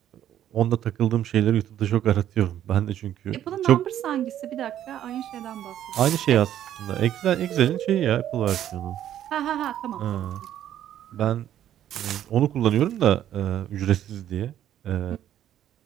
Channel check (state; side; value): quieter; left; 11.2 dB